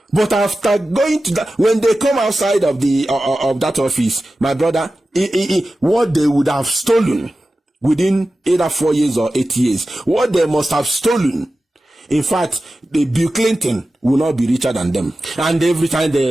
But after going to that, when they come outside of that office, my brother, what they would have stolen within either 4 years or 8 years, what they must have stolen In fact, the Bill Clinton will not be richer than them. And every time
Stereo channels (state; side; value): normal; both; correlation 0.94